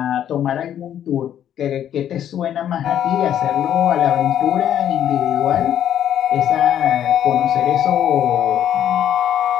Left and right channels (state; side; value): quieter; right; 10.3 dB